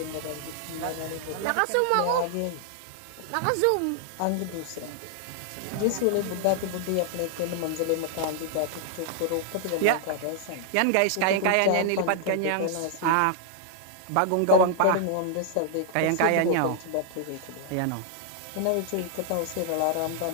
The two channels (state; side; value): different; both; correlation 0.00